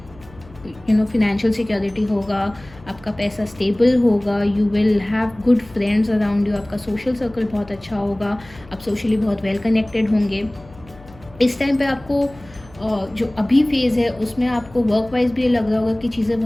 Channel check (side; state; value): left; noise; hum, 22 dB below the sound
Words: फिनेंशियल सिक्योरिटी होगा, आपका पैसा स्टेबल होगा, you will have good friends around you, आपका सोशल सर्कल बहुत अच्छा होगा, आप सोशली बहुत वेल कनेक्टेड होंगे। इस टाइम पे आपको जो अभी फेज़ है उसमें आपको वर्क वाइज भी लग रहा होगा कि चीज़ें